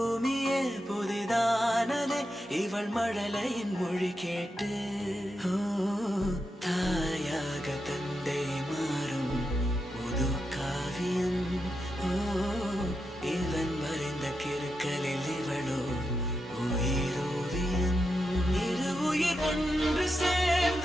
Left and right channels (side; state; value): both; normal; correlation 0.86